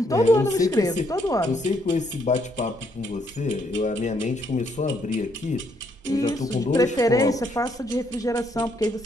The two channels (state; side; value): normal; both; correlation 0.72